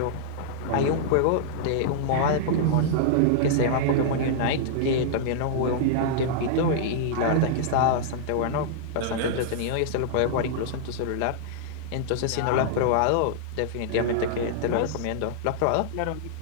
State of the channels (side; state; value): both; different; correlation -0.02